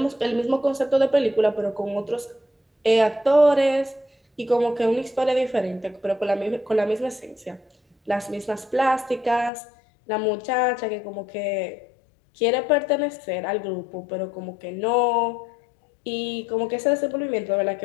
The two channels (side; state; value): right; drops out; at 9.5 s